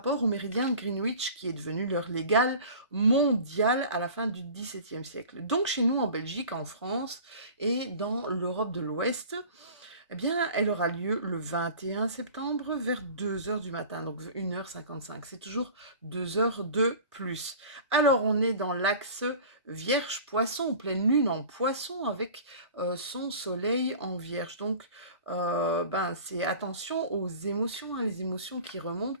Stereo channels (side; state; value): both; inverted; correlation -0.41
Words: au méridien de Greenwich qui est devenu l'heure légale mondiale à la fin du XVIIe siècle. Donc chez nous en Belgique, en France et dans l'Europe de l'Ouest, eh bien, elle aura lieu le 21 septembre vers 2 heures du matin, donc 1h55. C'est toujours 2 heures de plus. Alors, on est dans l'axe Vierge-Poisson, pleine lune en Poisson avec son soleil en Vierge. Donc, c'est attention aux émotions, hein, les émotions qui remontent,